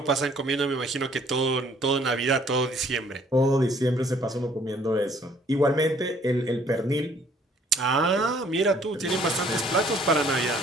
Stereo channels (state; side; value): normal; both; correlation 0.60